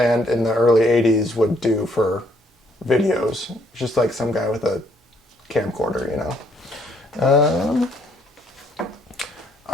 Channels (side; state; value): both; normal; correlation 0.68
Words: in the early '80s would do for videos. Just like some guy with a camcorder,